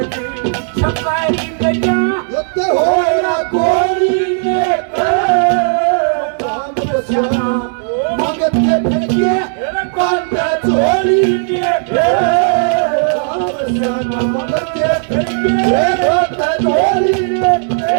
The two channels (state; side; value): silent; left; digital silence